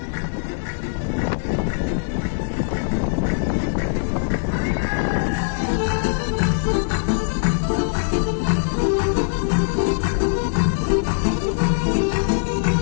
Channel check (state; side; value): silent; right; digital silence